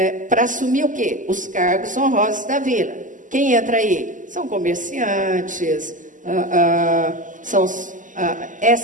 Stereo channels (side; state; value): left; late; 0.37 ms